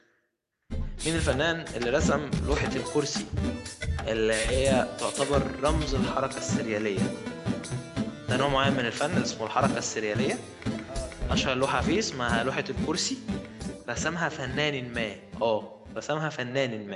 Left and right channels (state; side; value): identical; both; correlation 1.00